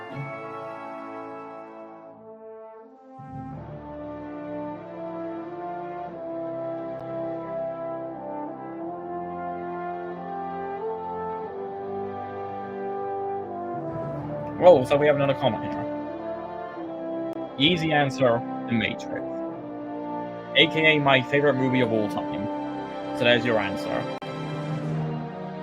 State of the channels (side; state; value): both; identical; correlation 1.00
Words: Oh, so we have another comment here. Easy answer, The Matrix. AKA my favorite movie of all time. So there's your answer.